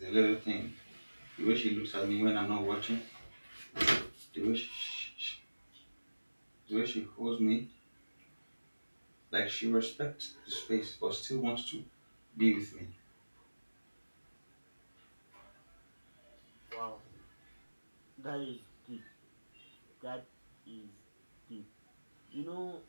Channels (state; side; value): inverted; both; correlation -1.00